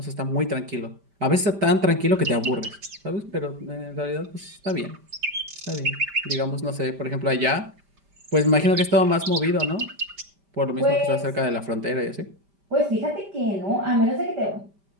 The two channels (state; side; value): late; left; 5.1 ms